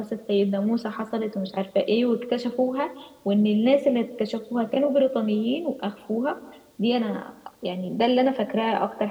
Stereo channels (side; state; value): both; identical; correlation 1.00